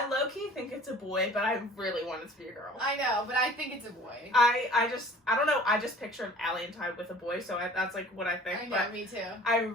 low-key think it's a boy, but I really want it to be a girl. I know, but I think it's a boy. I don't know, I just pictured Allie and Ty with a boy, so that's like what I think. I know, me too. I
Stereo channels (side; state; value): both; normal; correlation 0.47